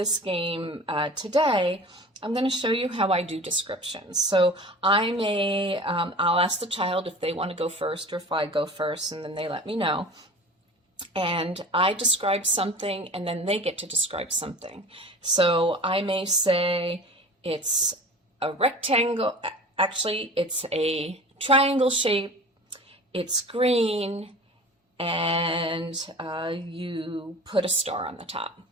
game today, I'm going to show you how I do descriptions. So I'll ask the child if they want to go first or if I go first, and then they let me know. And I describe something, and then they get to describe something. So I may say it's a rectangle, actually it's a triangle shape, it's green, and you put a star on the top.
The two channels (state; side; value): normal; both; correlation 0.39